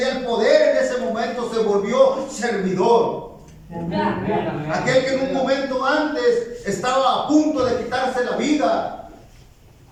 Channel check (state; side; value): identical; both; correlation 1.00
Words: el poder en ese momento, se volvió servidor. Aquel que en un momento antes estaba a punto de quitarse la vida,